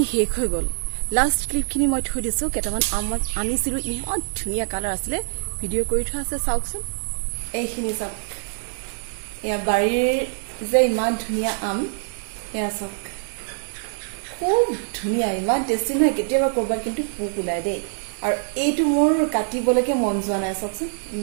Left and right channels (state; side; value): silent; left; digital silence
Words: শেষ হৈ গ'ল, লাষ্ট ক্লিপখিনি মই থৈ দিছোঁ। কেইটামান আম মই আনিছিলোঁ, ইমান ধুনীয়া কালাৰ আছিলে, ভিডিঅ' কৰি থোৱা আছে, চাওকচোন। এইখিনি চাওক, এয়া বাৰীৰ যে ইমান ধুনীয়া আম, এয়া চাওক, খুব ধুনীয়া, ইমান টেষ্টি নহয়। কেতিয়াবা ক'ৰবাত কিন্তু পোক ওলাই দেই, আৰু এইটো মোৰ কাটিবলৈকে মন যোৱা নাই, চাওকচোন